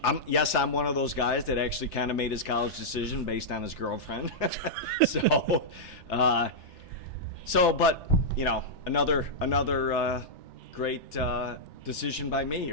one of those guys that actually kind of made his college decision based on his girlfriend. But another great decision by me,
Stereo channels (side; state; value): right; late; 3.4 ms